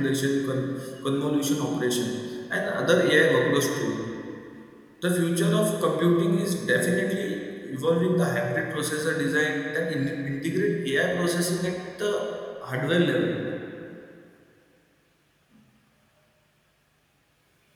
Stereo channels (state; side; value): identical; both; correlation 1.00